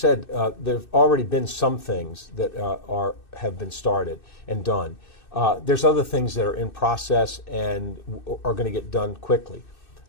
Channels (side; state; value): right; late; 2.6 ms